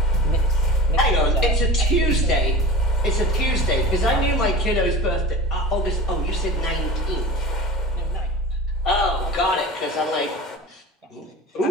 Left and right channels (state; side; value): normal; both; correlation 0.35